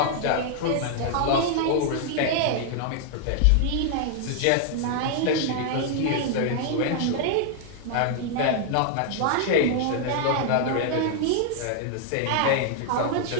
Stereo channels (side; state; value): both; different; correlation -0.01